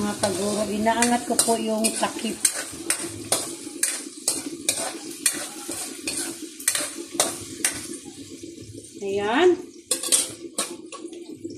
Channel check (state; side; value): identical; both; correlation 1.00